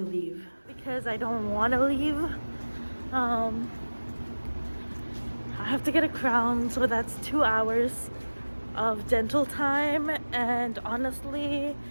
leave because I don't want to leave. I have to get a crown, so that's 2 hours of dental time, and honestly,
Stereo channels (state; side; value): inverted; both; correlation -1.00